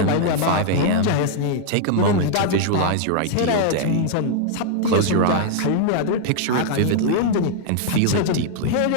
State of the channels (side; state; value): both; different; correlation 0.00